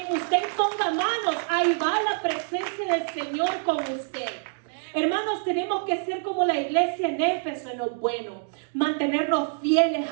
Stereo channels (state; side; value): silent; left; digital silence